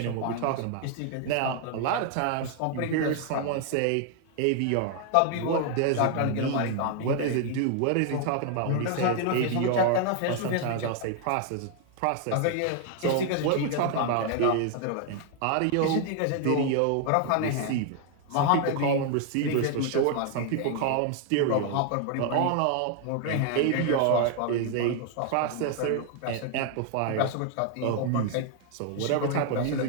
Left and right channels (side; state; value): both; different; correlation 0.00